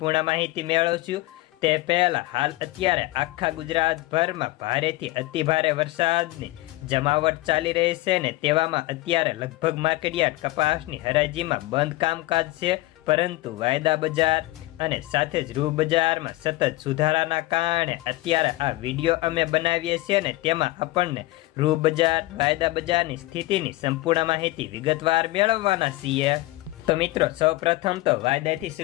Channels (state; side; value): quieter; right; 18.8 dB